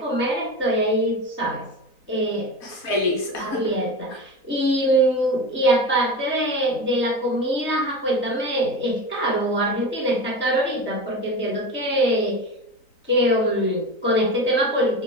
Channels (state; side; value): late; right; 3.9 ms